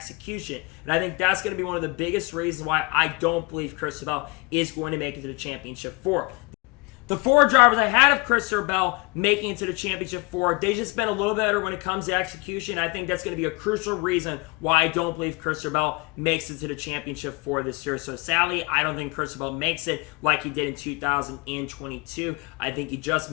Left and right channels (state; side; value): quieter; right; 27.6 dB